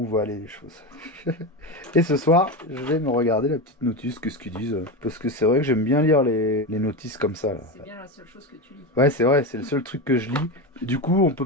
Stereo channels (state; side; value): normal; both; correlation 0.18